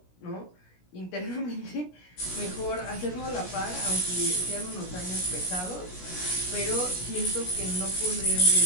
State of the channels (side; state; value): right; late; 17 ms